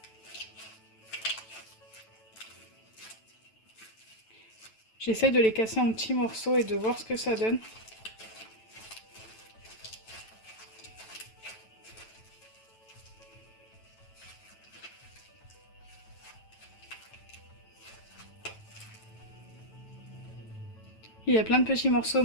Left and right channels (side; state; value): right; late; 9.1 ms